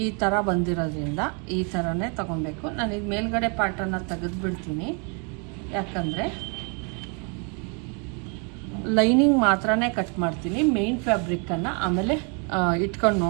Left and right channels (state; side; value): quieter; left; 36.5 dB